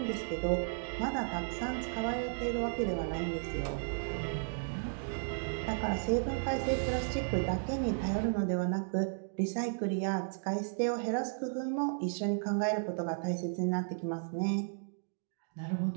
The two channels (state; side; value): silent; left; digital silence